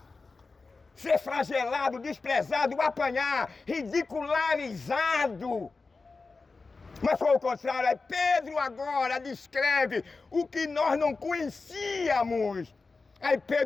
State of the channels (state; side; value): quieter; right; 4.0 dB